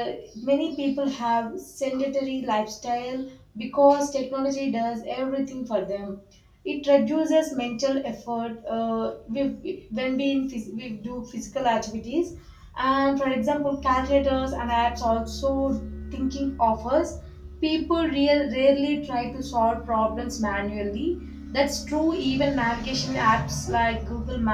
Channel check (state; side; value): identical; both; correlation 1.00